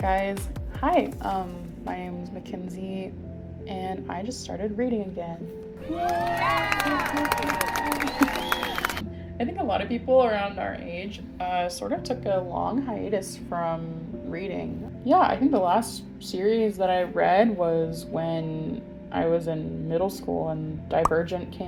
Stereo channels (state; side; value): identical; both; correlation 1.00